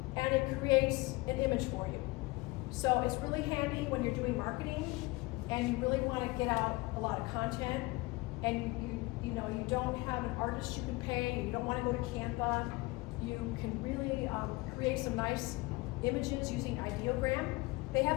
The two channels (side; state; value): right; quieter; 22.8 dB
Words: and it creates an image for you. So it's really handy when you're doing marketing, and you really want to get out a lot of content, and you know, you don't have an artist you can pay, you don't want to go to Canva, you can really create some nice images using Ideogram. They